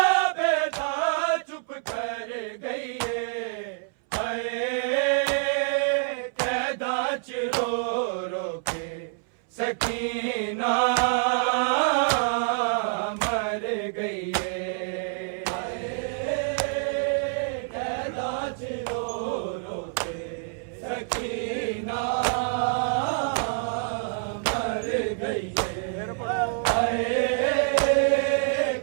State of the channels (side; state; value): left; silent; 60 dB below the other